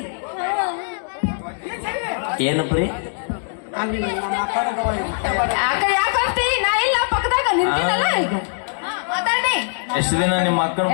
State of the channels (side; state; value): right; silent; digital silence